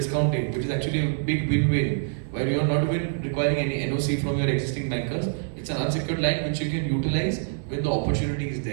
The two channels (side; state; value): left; silent; 61 dB below the other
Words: which is actually a big win-win, where you are not even requiring any NOC from your existing bankers. It's an unsecured line which you can utilize when the opportunity is